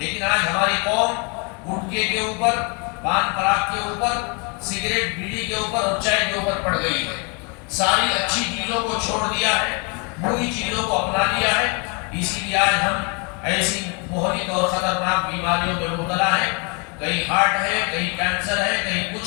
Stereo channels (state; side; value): quieter; right; 33.7 dB